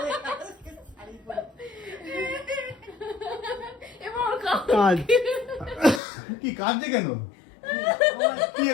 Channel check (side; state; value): right; drops out; at 6.0 s